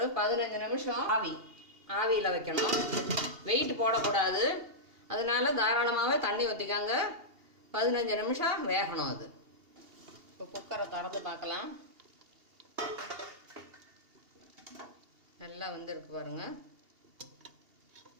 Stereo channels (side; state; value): left; late; 2.8 ms